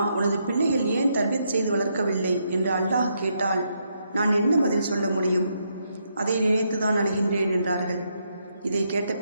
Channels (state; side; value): inverted; both; correlation -0.78